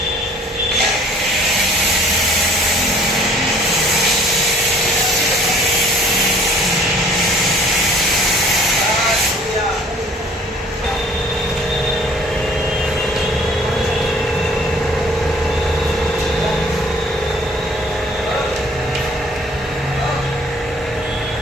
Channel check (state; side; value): normal; both; correlation 0.54